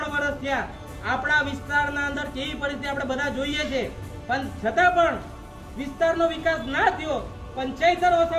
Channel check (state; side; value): identical; both; correlation 1.00